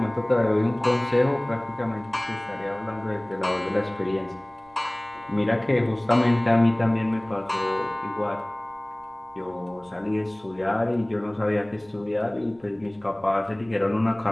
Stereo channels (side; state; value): right; noise; rumble, 30 dB below the sound